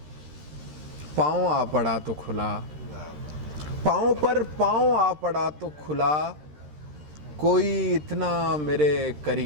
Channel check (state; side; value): late; left; 13 ms